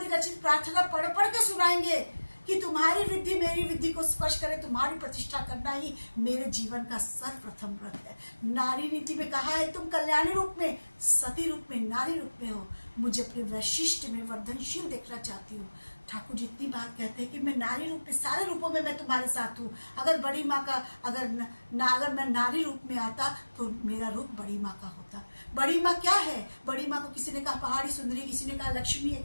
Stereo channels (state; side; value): inverted; both; correlation -1.00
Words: प्रार्थना पढ़ पढ़ के सुनाएंगे कि तुम्हारी वृद्धि मेरी वृद्धि को स्पर्श करे, तुम्हारी प्रतिष्ठा करना ही मेरे जीवन का सर्वप्रथम व्रत है। नारी नीति में कहा है तुम कल्याणी रूप में, सती रूप में, नारी रूप में हो। मुझे अपने वैशिष्ट में वर्धनशील देखना चाहती हूँ। ठाकुर जी इतनी बात कहते हैं कि मैं नारी रूप में, सारे रूपों में मैं तुम्हारे साथ हूँ। अगर बड़ी माँ का अगर मैं नारी रूप में आता तो मेरा रूप बड़ी माँ का होता। बड़ी माँ क्या है? बड़ी माँ को किसी ने कहा पहाड़ी सुंदरी, किसी ने कहा लक्ष्मी है,